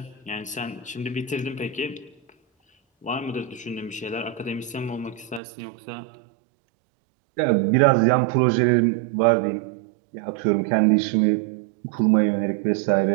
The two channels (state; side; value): drops out; left; at 5.4 s